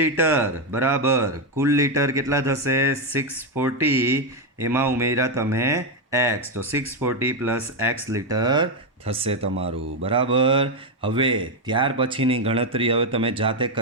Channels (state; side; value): normal; both; correlation 0.05